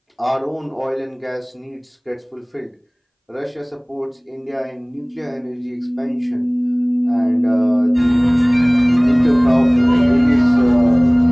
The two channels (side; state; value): both; identical; correlation 1.00